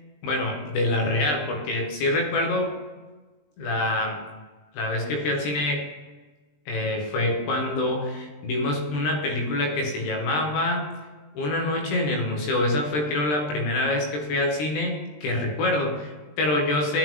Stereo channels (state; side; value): late; right; 20 ms